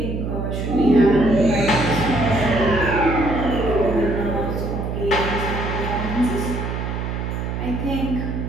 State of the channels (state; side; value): noise; right; hum, 3 dB below the sound